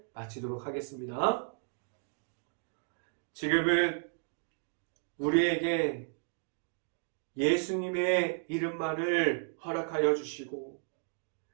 마치도록 하겠습니다. 지금은 우리에게 예수님의 이름만을 허락하여 주시고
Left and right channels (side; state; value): left; silent; 55 dB below the other